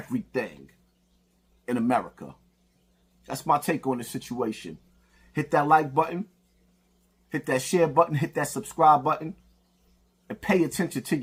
in America. That's my take on the situation. Hit that like button. Hit that share button. Hit that subscribe button. And pay attention to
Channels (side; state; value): both; identical; correlation 1.00